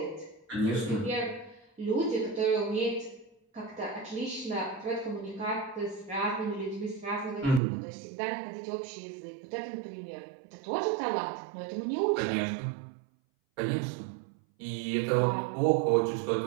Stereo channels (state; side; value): drops out; left; at 7.6 s